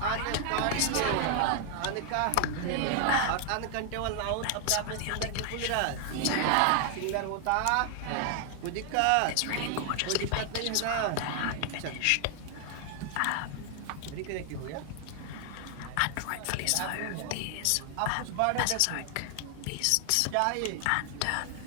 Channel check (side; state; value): both; different; correlation 0.00